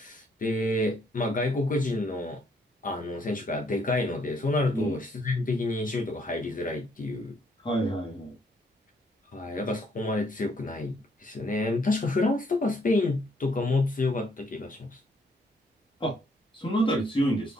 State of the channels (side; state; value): both; normal; correlation 0.69